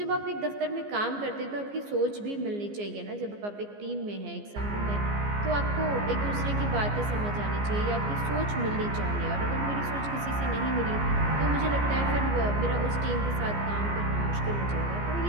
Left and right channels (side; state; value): left; late; 15 ms